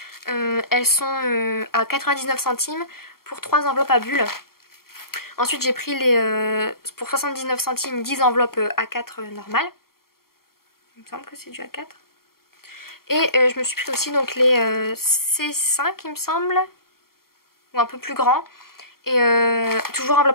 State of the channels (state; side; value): late; right; 0.93 ms